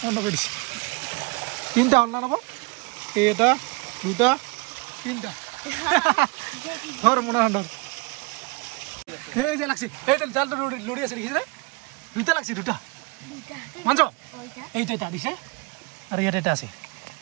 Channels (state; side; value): quieter; left; 27.0 dB